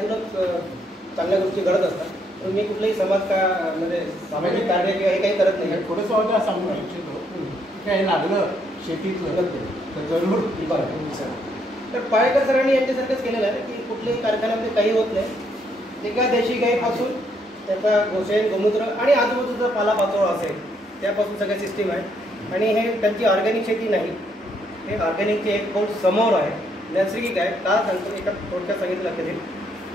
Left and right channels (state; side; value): normal; both; correlation 0.72